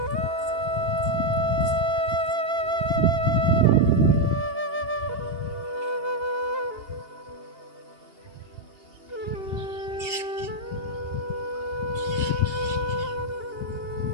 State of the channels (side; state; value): left; late; 2.8 ms